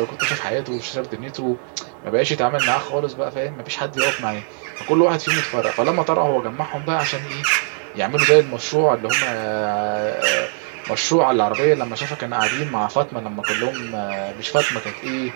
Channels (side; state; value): left; silent; 62 dB below the other